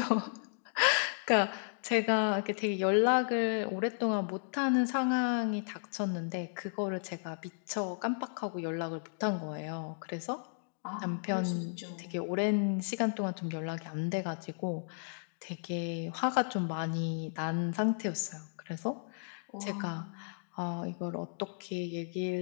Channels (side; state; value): right; silent; digital silence